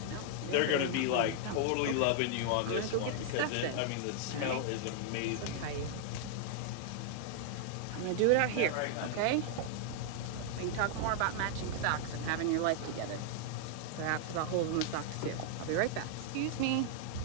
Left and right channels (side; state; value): both; different; correlation -0.01